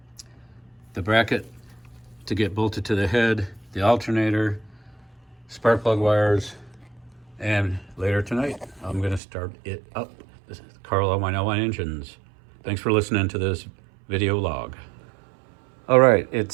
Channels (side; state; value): left; drops out; at 9.2 s